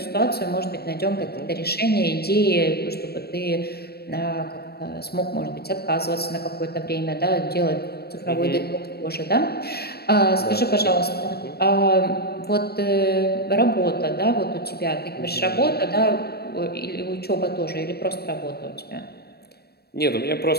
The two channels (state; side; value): late; right; 0.47 ms